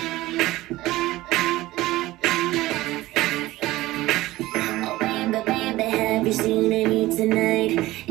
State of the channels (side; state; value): left; quieter; 17.7 dB